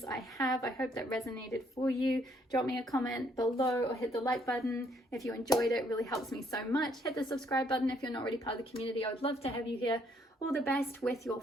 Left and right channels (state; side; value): normal; both; correlation 0.68